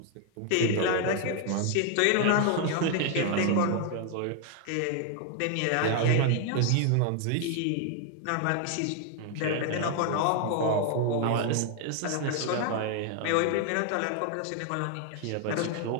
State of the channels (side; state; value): both; different; correlation 0.00